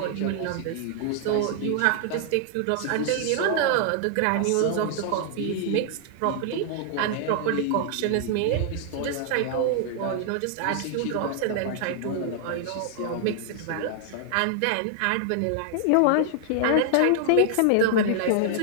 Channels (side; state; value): both; different; correlation -0.01